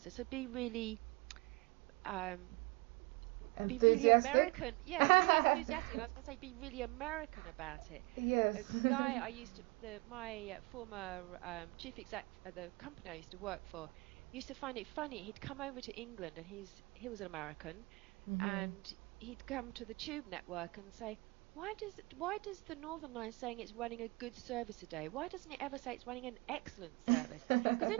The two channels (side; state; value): left; quieter; 26.8 dB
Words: So be really American. Yeah, really enthusiastic. And I was going to say, be really American about it. Yes. A guy my former chief exec at the company I used to work for, used to find it funny. He'd come over to England, and he was an American, and he'd come to the Tube network and say, why does the Northern Line saying it's running a good service a day? Why doesn't it ever say it's running an excellent service? Because